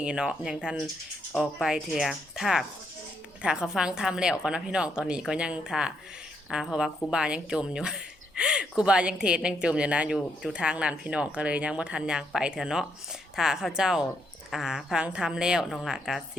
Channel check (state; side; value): normal; both; correlation 0.76